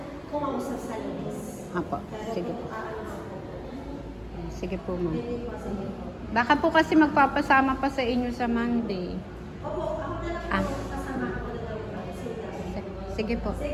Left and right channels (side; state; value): both; identical; correlation 1.00